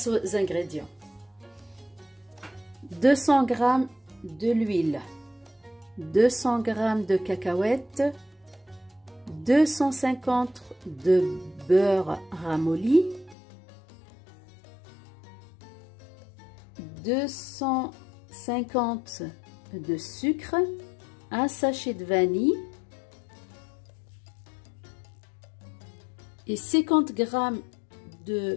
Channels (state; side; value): drops out; right; at 13.4 s